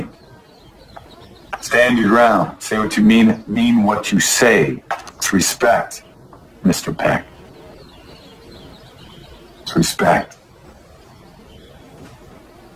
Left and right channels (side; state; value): both; identical; correlation 1.00